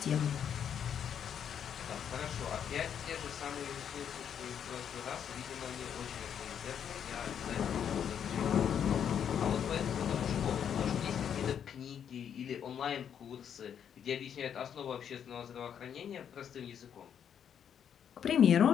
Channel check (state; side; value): quieter; right; 8.5 dB